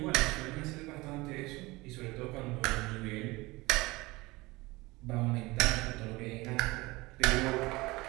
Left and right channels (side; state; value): left; quieter; 21.9 dB